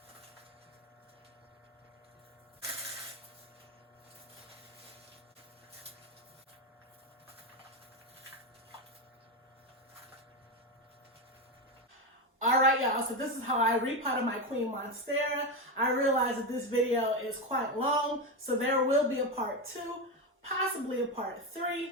All right, y'all, so this is how I repotted my Queen Monstera. I realize that this video is quite long, so there will be a part 2, possibly a part 3.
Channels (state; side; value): normal; both; correlation 0.14